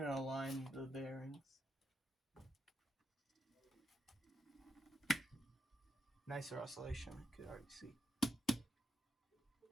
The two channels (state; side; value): normal; both; correlation 0.81